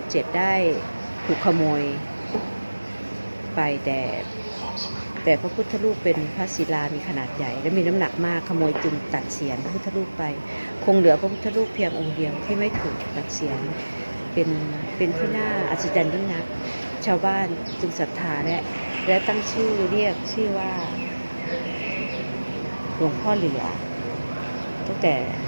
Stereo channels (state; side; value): inverted; both; correlation -1.00